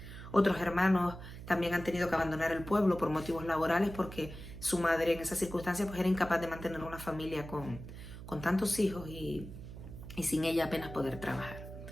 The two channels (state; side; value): noise; right; hum, 12 dB below the sound